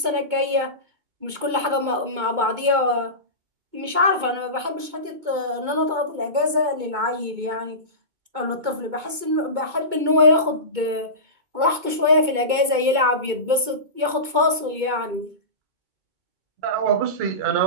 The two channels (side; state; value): left; late; 2.2 ms